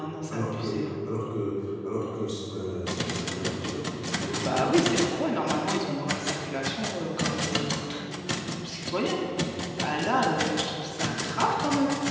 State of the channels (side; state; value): both; identical; correlation 1.00